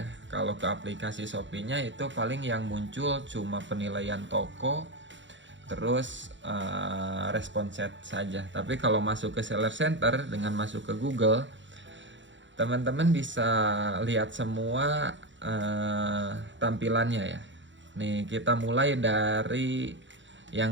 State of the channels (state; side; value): late; left; 0.54 ms